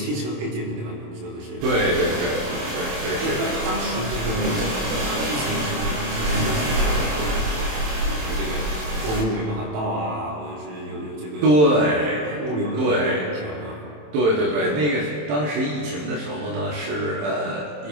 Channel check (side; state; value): left; late; 27 ms